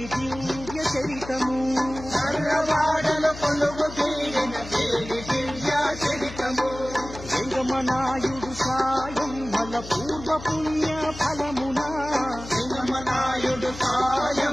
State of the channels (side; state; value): left; noise; hum, 13 dB below the sound